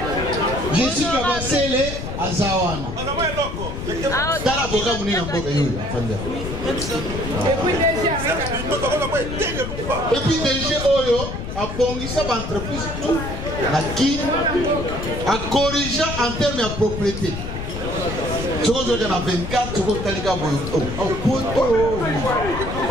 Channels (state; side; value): noise; left; rumble, 6 dB below the sound